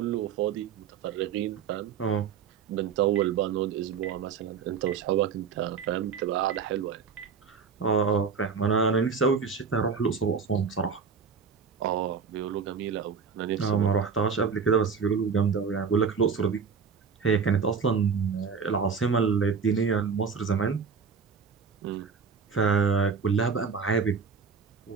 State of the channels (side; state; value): left; quieter; 5.9 dB